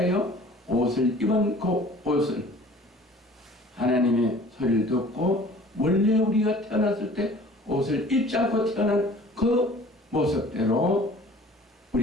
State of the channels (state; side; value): normal; both; correlation 0.48